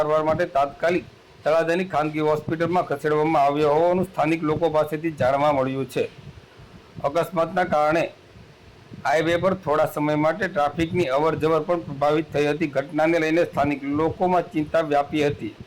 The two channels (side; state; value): both; identical; correlation 1.00